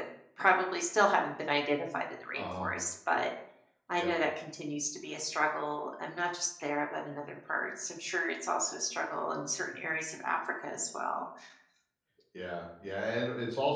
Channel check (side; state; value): both; identical; correlation 1.00